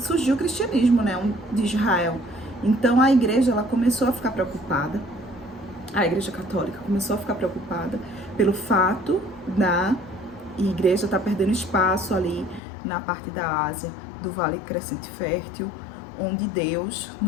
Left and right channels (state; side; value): drops out; right; at 12.6 s